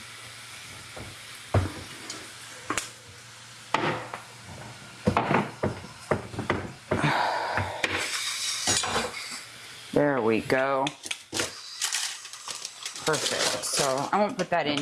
There we go. Perfect. So I won't put that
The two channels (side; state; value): both; identical; correlation 1.00